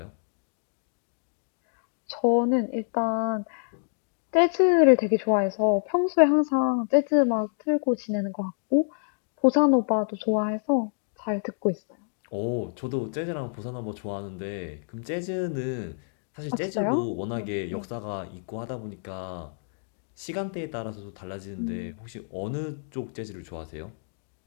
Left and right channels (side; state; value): right; silent; digital silence